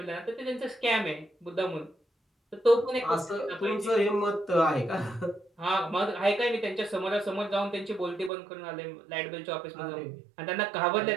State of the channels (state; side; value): drops out; left; at 8.3 s